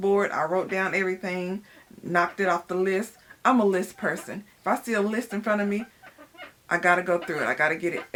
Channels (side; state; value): both; identical; correlation 1.00